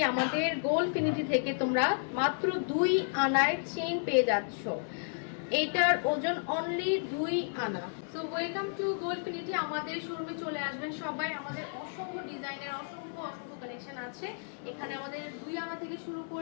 আমাদের গোল্ডফিনিটি থেকে তোমরা মাত্র 2 আনায় চেইন পেয়ে যাচ্ছ। এটার ওজন অনলি 2 আনা। So welcome to Goldfinity. আমাদের শোরুমে চলে আসবেন সবাই। আমাদের অসংখ্য ডিজাইনের অসংখ্য কালেকশন আছে এখানে। আমাদের 2 আনা থেকে শুরু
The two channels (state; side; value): silent; right; 56 dB below the other